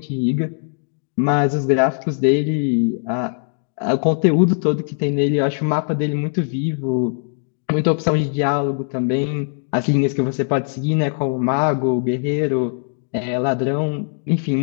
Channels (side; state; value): right; silent; digital silence